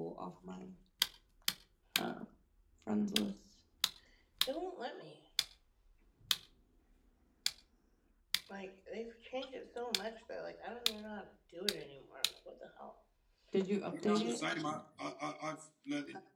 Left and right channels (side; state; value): both; identical; correlation 1.00